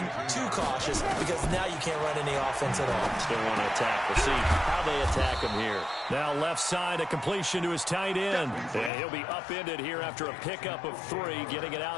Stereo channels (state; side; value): drops out; right; at 8.9 s